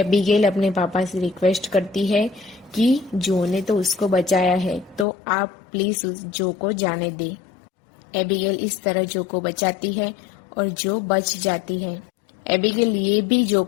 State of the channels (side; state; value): right; drops out; at 5.1 s